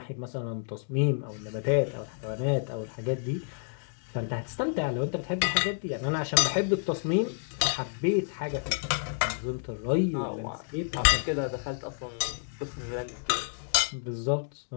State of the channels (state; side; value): silent; right; digital silence